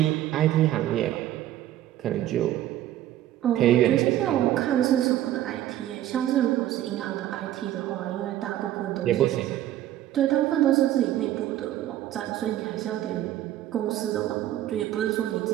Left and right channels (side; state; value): left; quieter; 13.0 dB